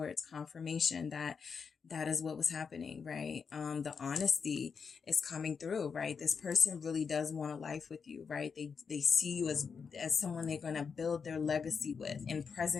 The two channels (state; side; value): quieter; right; 5.9 dB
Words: confirmation that is what was happening, right? The honesty is coming through, right? This person really does want a life with you, right? They see you as someone they're going to build their legacy with, in